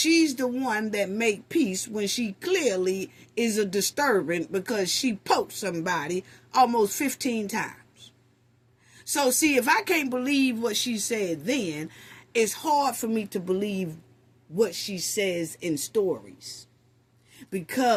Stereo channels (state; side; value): identical; both; correlation 1.00